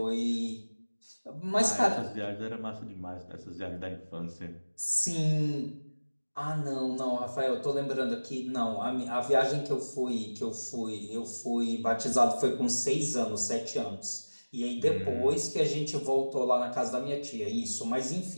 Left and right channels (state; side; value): inverted; both; correlation -1.00